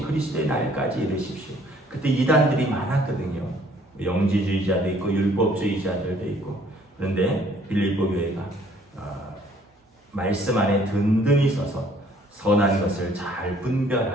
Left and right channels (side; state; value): both; normal; correlation 0.60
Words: 그리스도의 날까지 이르십시오. 그때 이단들이 많았거든요. 영지주의자도 있고 율법주의자들도 있고. 그런데 빌립보 교회가 말씀 안에 든든히 서서 선한 것을 잘